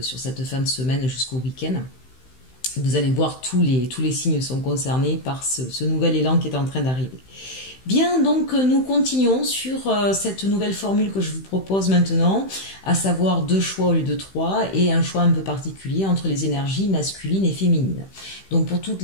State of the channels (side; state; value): right; late; 15 ms